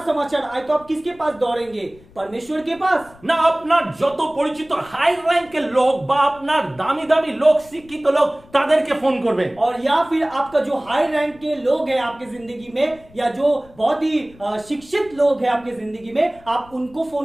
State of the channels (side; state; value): left; noise; rumble, 25 dB below the sound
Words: समाचार आए तो आप किसके पास दौड़ेंगे? परमेश्वर के पास? না আপনার যত পরিচিত হাই র্যাঙ্কের লোক বা আপনার দামি দামি লোক, শিক্ষিত লোক, তাদেরকে ফোন করবেন। और या फिर आपका जो हाई रैंक के लोग हैं आपके जिंदगी में, या जो बहुत ही शिक्षित लोग हैं आपके जिंदगी में, आप उनको